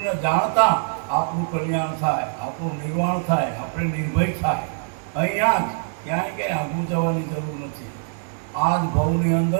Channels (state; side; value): silent; left; 63 dB below the other